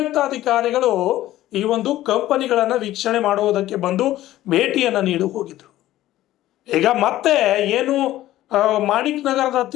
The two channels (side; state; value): right; quieter; 14.7 dB